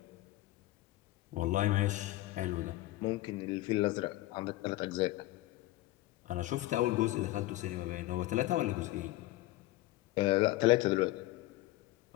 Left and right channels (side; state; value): right; quieter; 17.6 dB